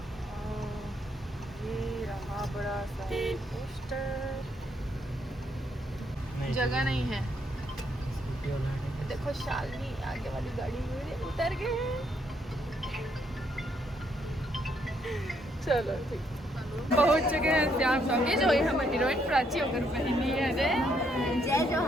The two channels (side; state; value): both; normal; correlation 0.73